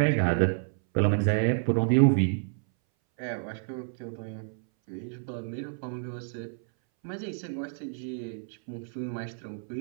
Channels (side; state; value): left; silent; 58 dB below the other